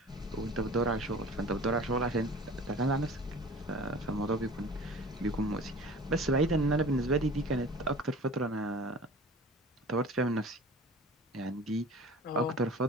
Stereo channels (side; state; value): both; normal; correlation 0.41